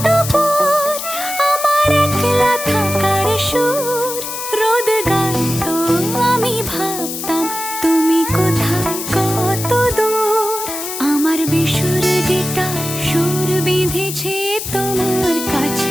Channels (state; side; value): noise; left; hiss, 6 dB below the sound